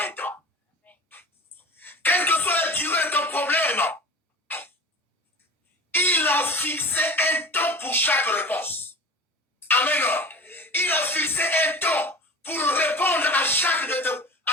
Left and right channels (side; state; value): both; normal; correlation 0.36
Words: Quelle que soit la durée de ton problème, il a fixé un temps pour chaque réponse. Amen. Il a fixé un temps pour répondre à chacun